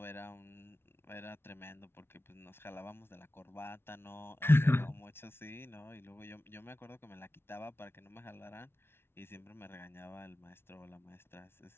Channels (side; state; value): right; late; 0.12 ms